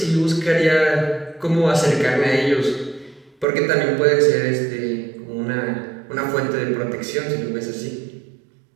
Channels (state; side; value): drops out; left; at 3.5 s